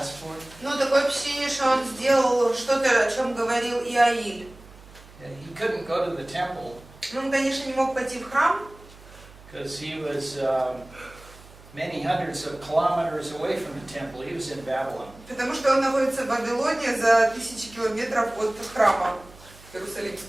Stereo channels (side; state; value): right; noise; hum, 22 dB below the sound